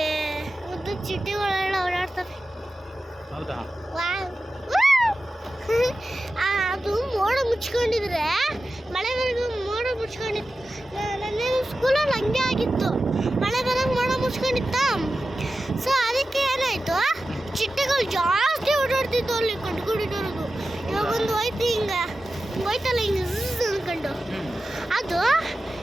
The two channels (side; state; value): both; normal; correlation 0.94